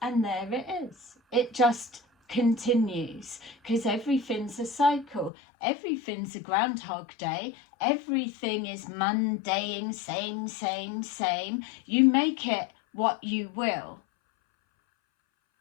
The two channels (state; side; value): drops out; right; at 5.3 s